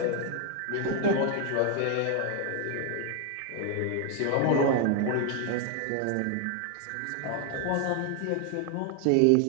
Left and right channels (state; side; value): different; both; correlation 0.00